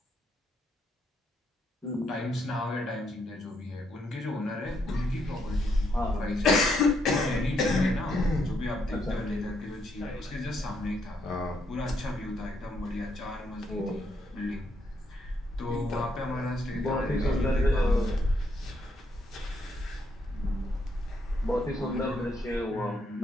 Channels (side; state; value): both; normal; correlation 0.75